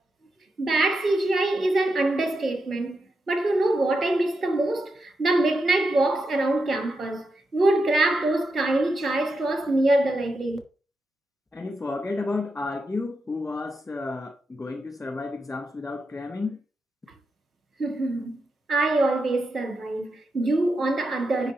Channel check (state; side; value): normal; both; correlation 0.86